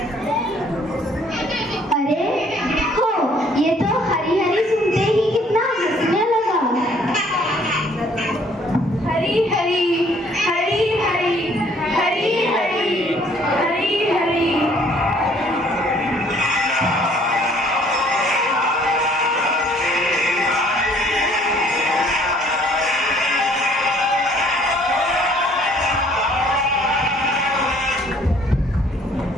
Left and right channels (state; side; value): normal; both; correlation 0.60